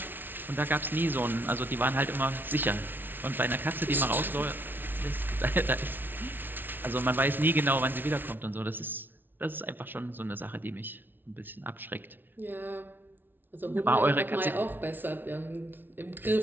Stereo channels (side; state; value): left; late; 0.096 ms